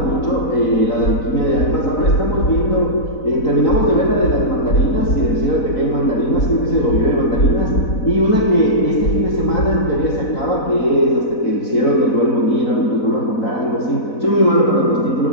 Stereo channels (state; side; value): late; right; 4.0 ms